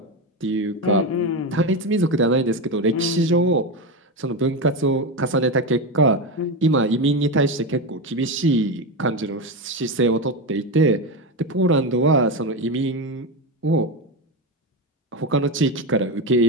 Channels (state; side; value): normal; both; correlation 0.15